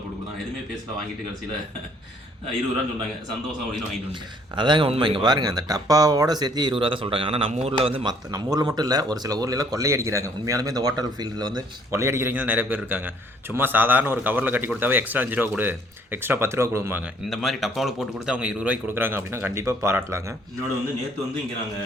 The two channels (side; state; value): both; normal; correlation 0.62